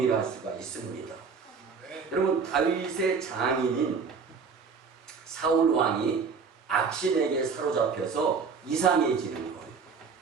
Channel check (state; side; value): quieter; left; 5.4 dB